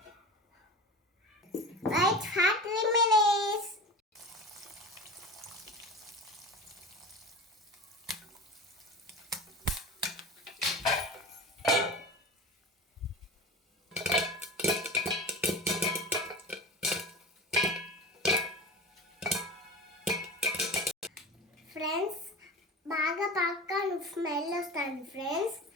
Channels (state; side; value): normal; both; correlation 0.32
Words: Wait for 3 minutes. Friends, బాగా పాప్కార్న్ స్మెల్ వస్తుంది ఫ్రెండ్స్.